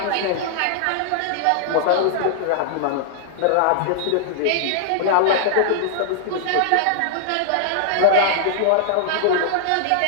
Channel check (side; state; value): both; different; correlation -0.01